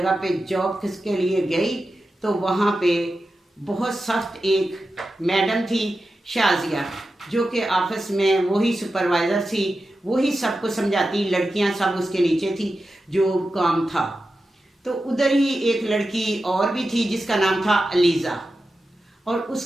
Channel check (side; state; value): both; normal; correlation 0.91